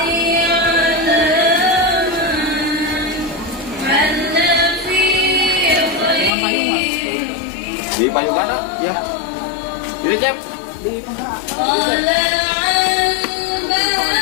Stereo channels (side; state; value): right; drops out; at 6.3 s